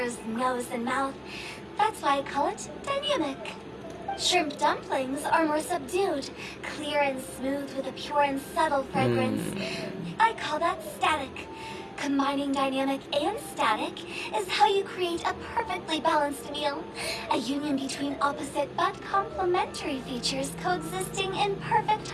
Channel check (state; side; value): identical; both; correlation 1.00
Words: nose, and mouth. That's why I call it dynamic. Shrimp dumplings are more subdued, clear and smooth with a pure and subtle fragrance. I call that static. Combining dynamic and static is how you create a perfectly balanced meal. A union between opposite but complementary features coexisting in perfect